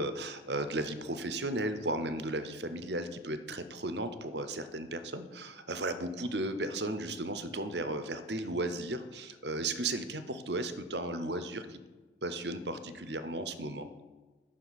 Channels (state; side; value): normal; both; correlation 0.25